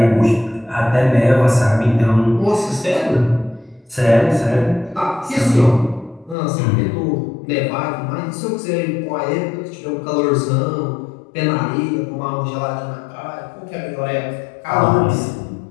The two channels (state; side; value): drops out; right; at 6.4 s